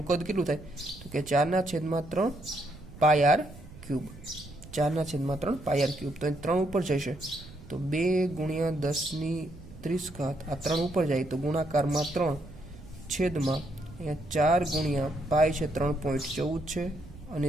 કદ કેટલું થાય તો કે 4/3 πr ક્યુબ. 4/3 πr cube. તો 3 ઉપર જશે તો 2×10⁻30. આ 3 ઉપર જાય તો ગુણાકારમાં 3 છેદમાં અહીંયા 4 × π છે 3.14 છે અને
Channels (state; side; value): noise; right; rumble, 18 dB below the sound